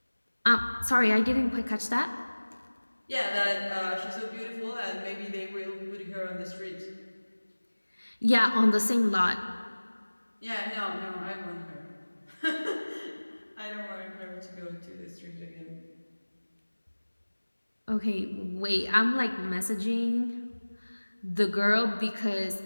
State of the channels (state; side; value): inverted; both; correlation -1.00